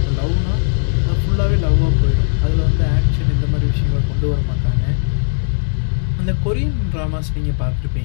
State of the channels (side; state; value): right; silent; digital silence